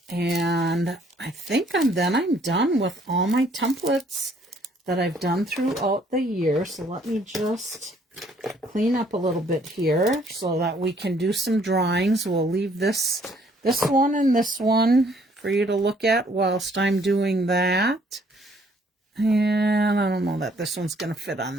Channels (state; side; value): normal; both; correlation 0.63